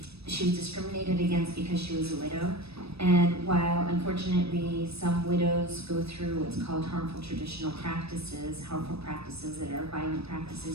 She was discriminated against because she was a widow. And while unfortunately some widows go through what's called harmful traditional practices, harmful practices that are violent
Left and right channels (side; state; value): left; late; 0.78 ms